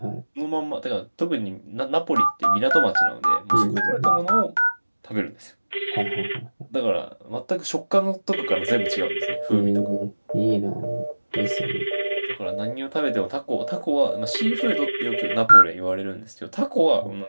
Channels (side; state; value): both; inverted; correlation -1.00